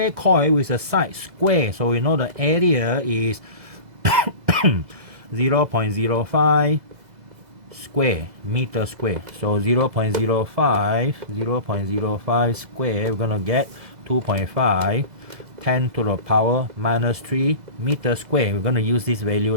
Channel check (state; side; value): late; left; 2.0 ms